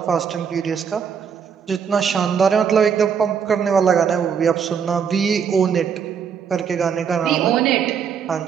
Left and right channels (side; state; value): left; quieter; 7.0 dB